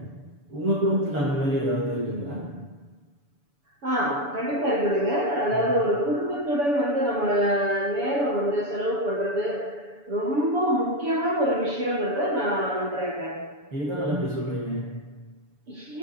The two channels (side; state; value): left; late; 7.0 ms